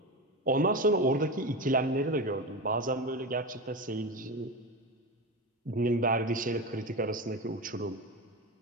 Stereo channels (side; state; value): both; normal; correlation 0.21